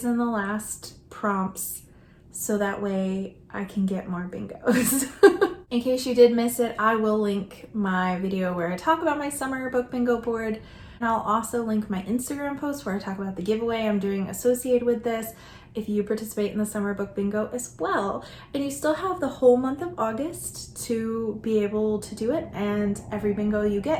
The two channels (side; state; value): both; identical; correlation 1.00